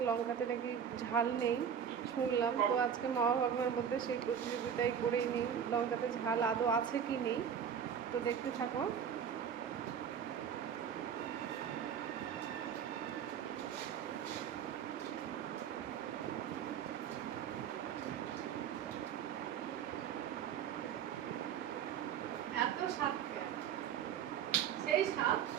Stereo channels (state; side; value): quieter; left; 8.2 dB